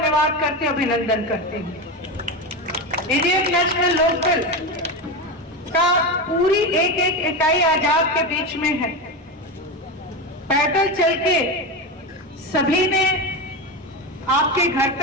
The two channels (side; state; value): both; normal; correlation 0.18